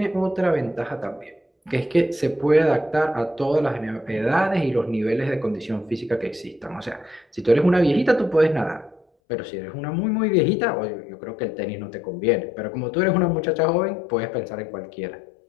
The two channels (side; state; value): right; drops out; at 9.1 s